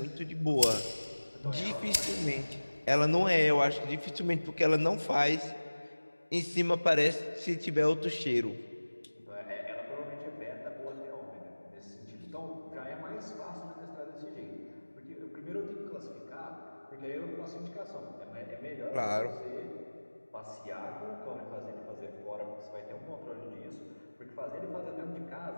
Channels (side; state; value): both; inverted; correlation -1.00